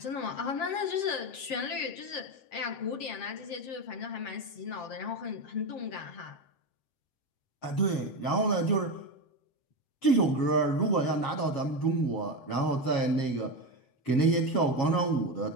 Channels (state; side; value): late; right; 7.5 ms